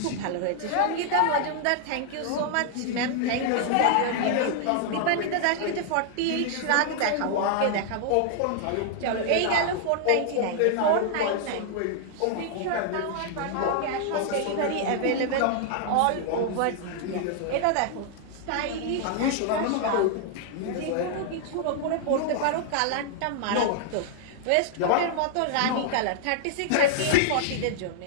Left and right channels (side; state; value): both; different; correlation 0.00